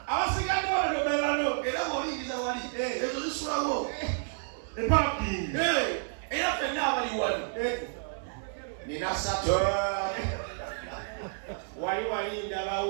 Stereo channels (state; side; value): silent; left; digital silence